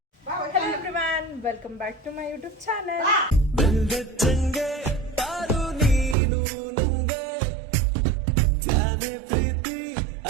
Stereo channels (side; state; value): left; drops out; at 6.2 s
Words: Hello everyone, welcome back to my YouTube channel.